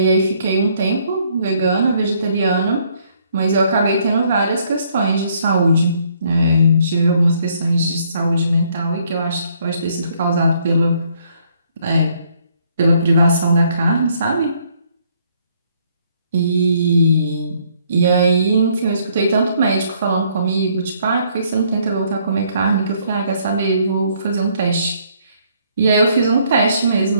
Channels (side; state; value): both; inverted; correlation -0.66